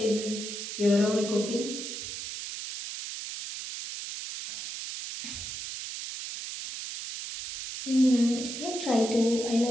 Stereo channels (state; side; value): noise; right; hiss, 7 dB below the sound